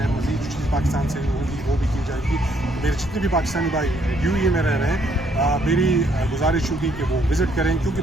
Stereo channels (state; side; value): normal; both; correlation 0.69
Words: मज़ीद जो चीज़ पाकिस्तान से होगी वो भी की जाएगी। मेरे जितने भी पाकिस्तानी भाई UAE में रह रहे हैं, मेरी गुजारिश होगी कि वो विज़िट करें, क्योंकि